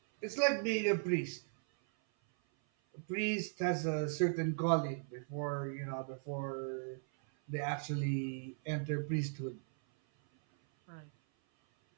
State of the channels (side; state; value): left; silent; 53 dB below the other